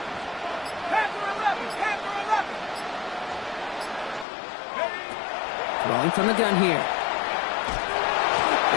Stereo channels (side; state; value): right; drops out; at 4.2 s